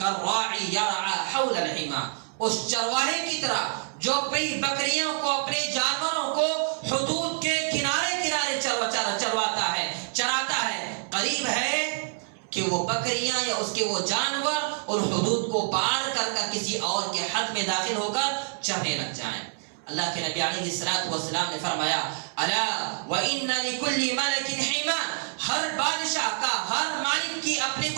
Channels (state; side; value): silent; left; 60 dB below the other